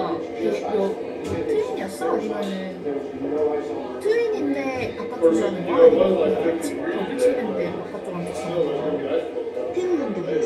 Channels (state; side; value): identical; both; correlation 1.00